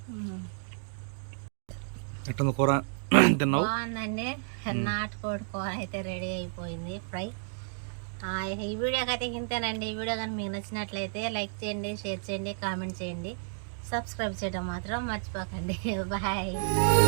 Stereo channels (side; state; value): left; silent; digital silence